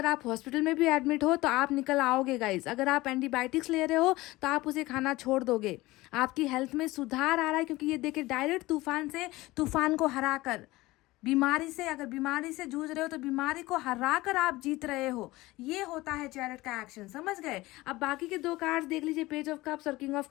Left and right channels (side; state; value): right; quieter; 19.5 dB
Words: आप हॉस्पिटल में भी एडमिट हो तो आप निकल आओगे गाइस। अगर आप एंटीबायोटिक्स ले रहे हो तो आप उसे खाना छोड़ दोगे। आपकी हेल्थ में सुधार आ रहा है, क्योंकि ये देखिए डायरेक्ट तूफान से, तूफान को हरा कर, बीमारी से, अगर बीमारी से जूझ रहे हो तो बीमारी को हरा कर आप जीत रहे हो। ये होता है चैरिट का एक्शन, समझ गए। अब बाकी के 2 कार्ड्स देख लीजिए, पेज ऑफ कप्स और किंग ऑफ